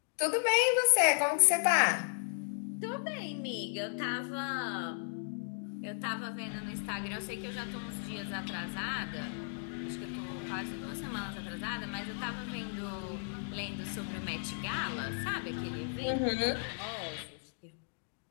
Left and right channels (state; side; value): silent; right; digital silence